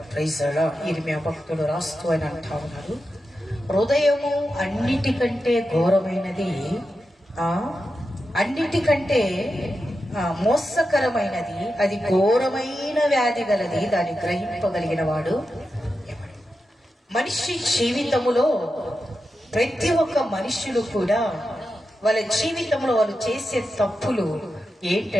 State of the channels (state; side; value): normal; both; correlation 0.90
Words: Praise the Lord. ఇర్మియా భక్తుడు రాస్తూ అని అంటా ఉన్నారు, హృదయము అన్నిటికంటే ఘోరమైనది, అన్నిటికంటే మోసకరమైనది, అది ఘోరమైన వ్యాధి గలది, దాన్ని గ్రహింపగలిగిన వాడు ఎవడు. మనిషి జీవితములో ప్రతి ఒక్క మనుషులు కూడా వాళ్ళ జీవితంలో వాళ్ళు చేసే తప్పులు